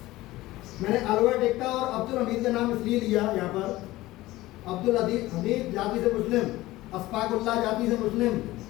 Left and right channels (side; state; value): right; quieter; 17.7 dB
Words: मैंने अलबर्ट एक्टा और अब्दुल हमीद का नाम इसलिए लिया यहाँ पर। अब्दुल हमीद जाति से मुस्लिम, अशफाकुल्लाह जाति से मुस्लिम,